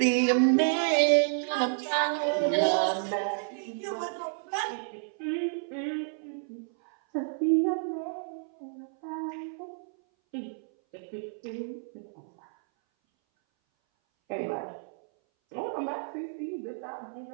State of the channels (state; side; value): silent; left; 58 dB below the other